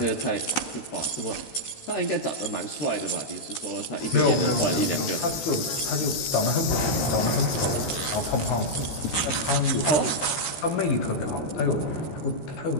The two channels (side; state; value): right; late; 13 ms